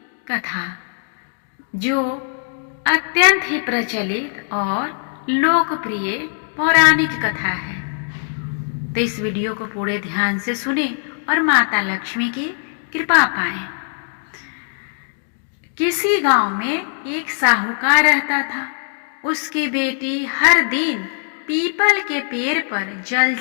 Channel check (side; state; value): right; silent; digital silence